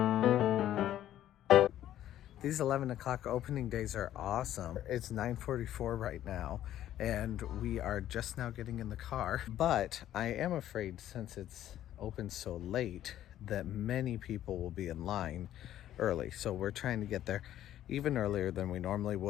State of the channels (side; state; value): right; quieter; 12.2 dB